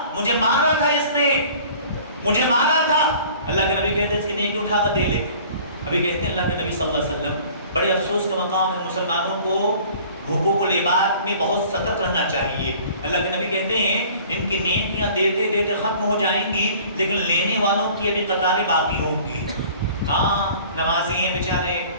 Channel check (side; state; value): both; inverted; correlation -0.49